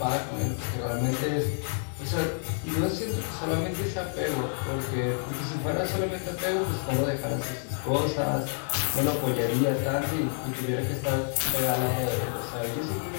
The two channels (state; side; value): silent; right; 55 dB below the other